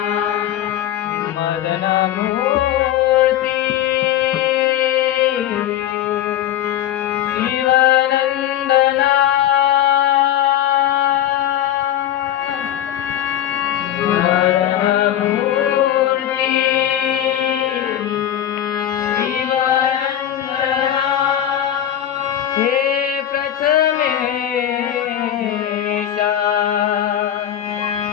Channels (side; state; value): right; quieter; 11.4 dB